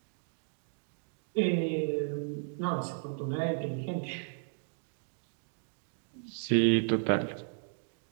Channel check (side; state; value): left; silent; digital silence